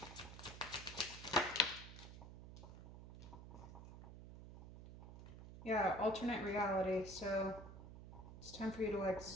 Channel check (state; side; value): noise; right; hum, 13 dB below the sound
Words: Yeah, alternate reality, so it's time for you to like